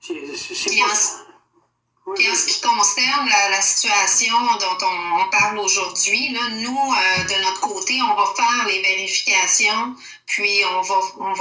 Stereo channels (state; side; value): identical; both; correlation 1.00